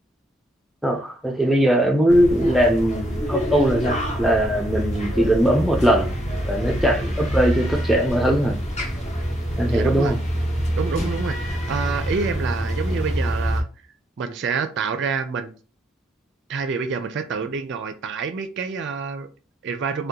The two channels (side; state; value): both; normal; correlation 0.74